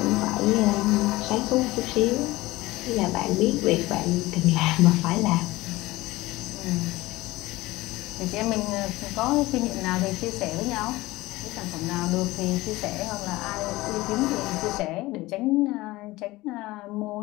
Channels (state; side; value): quieter; right; 19.3 dB